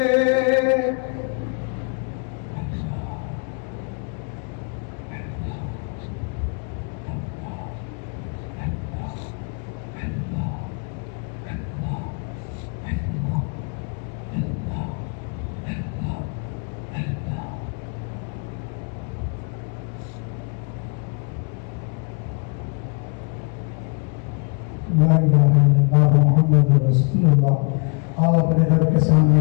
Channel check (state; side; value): quieter; right; 37.5 dB